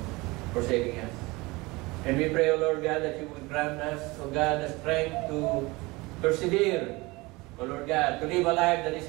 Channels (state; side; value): quieter; left; 23.1 dB